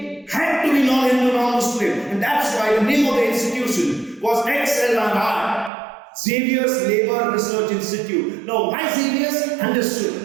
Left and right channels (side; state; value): left; drops out; at 5.7 s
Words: had to be non-Hindu, non-Muslim, and that's why the name of the institution was XLRI. Xavier's Labour Research Institute. Now, why Xavier's?